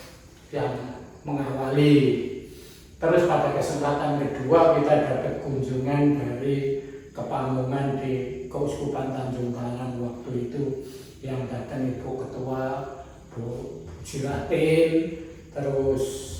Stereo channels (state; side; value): identical; both; correlation 1.00